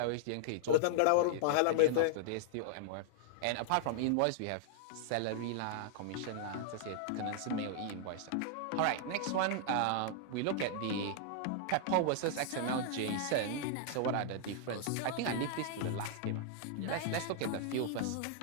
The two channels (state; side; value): different; both; correlation -0.01